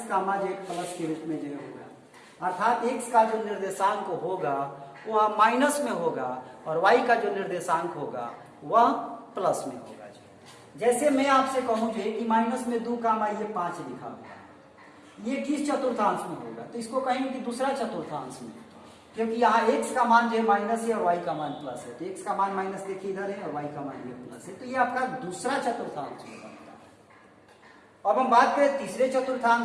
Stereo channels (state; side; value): identical; both; correlation 1.00